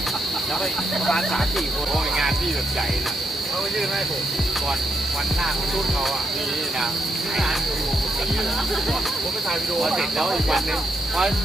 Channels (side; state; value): both; normal; correlation 0.80